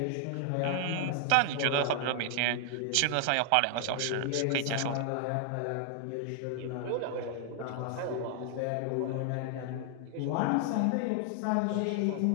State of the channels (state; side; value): different; both; correlation 0.00